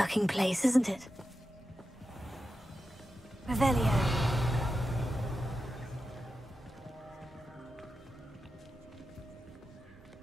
place, isn't it? Revelio.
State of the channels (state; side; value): normal; both; correlation 0.90